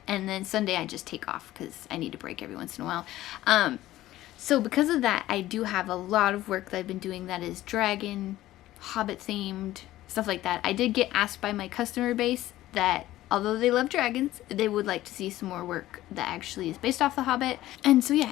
And then Sunday I just take off because I need a break every once in a while. So because of that, I do have a lot of work that I've been doing that is dragon, Hobbit themed, stuff like that. I did get asked by my customer base that although they love dragons, they would like to see some more work that actually is based off The Hobbit. And so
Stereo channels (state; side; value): quieter; right; 15.2 dB